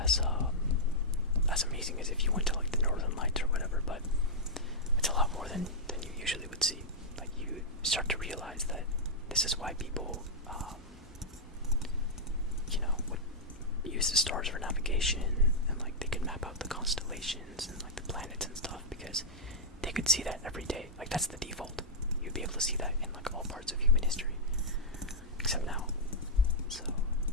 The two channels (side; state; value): both; normal; correlation -0.07